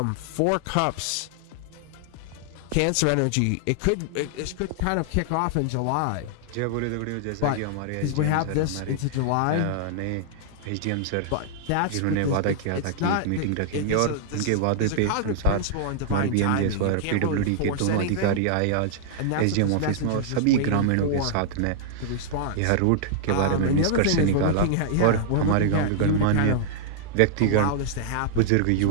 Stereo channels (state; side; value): different; both; correlation -0.01